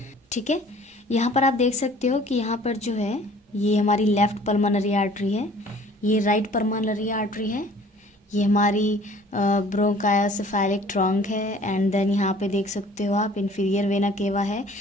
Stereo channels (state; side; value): normal; both; correlation 0.51